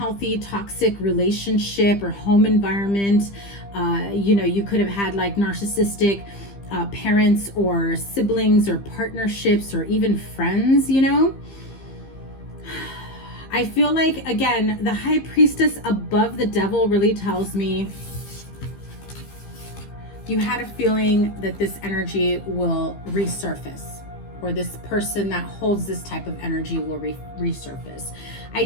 toxic relationship or home environment, you know, you could have had like narcissistic parents or siblings or partnerships or even friends, you know. I feel like, again, the High Priestess above the Devil really tells me you had a feeling that this energy will resurface, or this person that holds this type of energy will resurface. I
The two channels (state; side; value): late; right; 15 ms